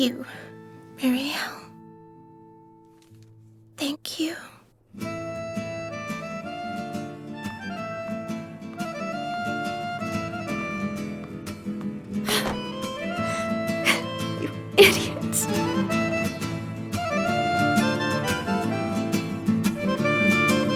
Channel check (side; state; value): both; identical; correlation 1.00